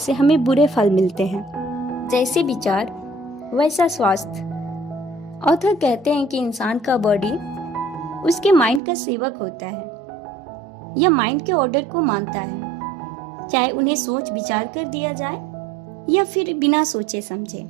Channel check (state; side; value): drops out; left; at 8.8 s